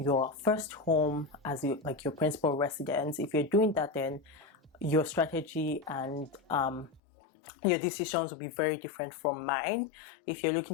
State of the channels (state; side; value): drops out; right; at 7.0 s